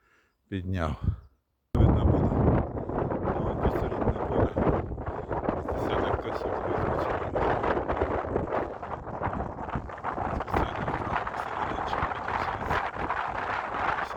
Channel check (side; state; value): both; identical; correlation 1.00